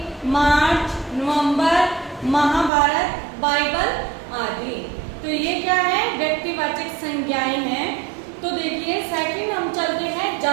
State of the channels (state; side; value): drops out; left; at 2.7 s